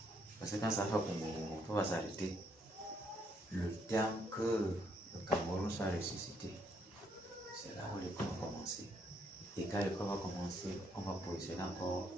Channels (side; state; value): both; normal; correlation 0.72